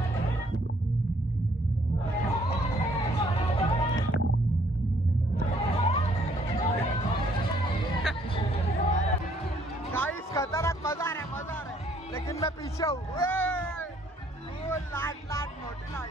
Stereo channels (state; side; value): normal; both; correlation 0.65